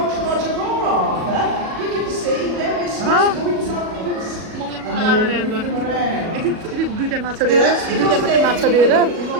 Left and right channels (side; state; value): left; late; 37 ms